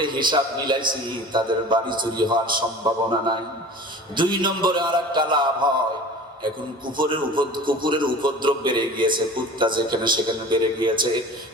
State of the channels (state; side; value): normal; both; correlation 0.40